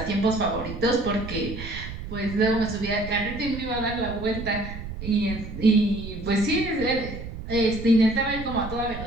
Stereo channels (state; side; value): noise; right; rumble, 9 dB below the sound